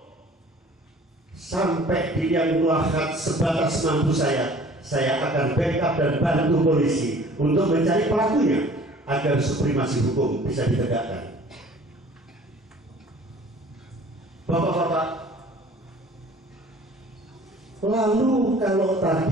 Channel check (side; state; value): both; normal; correlation 0.50